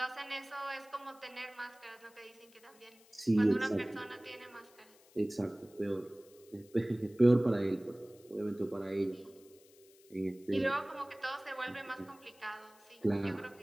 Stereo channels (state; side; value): noise; left; hiss, 27 dB below the sound